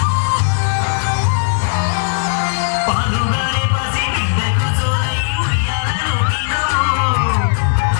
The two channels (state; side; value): silent; right; digital silence